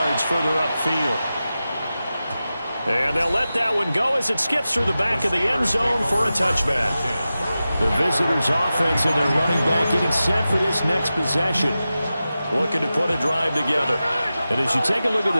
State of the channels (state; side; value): inverted; both; correlation -0.94